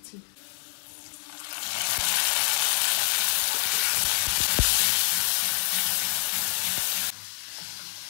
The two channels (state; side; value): silent; right; 60 dB below the other